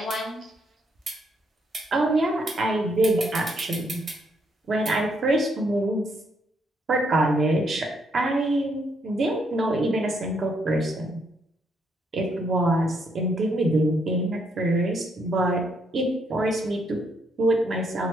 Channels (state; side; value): normal; both; correlation 0.74